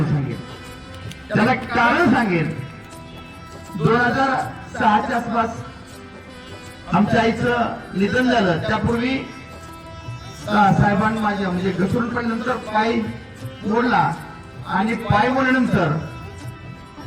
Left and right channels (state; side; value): identical; both; correlation 1.00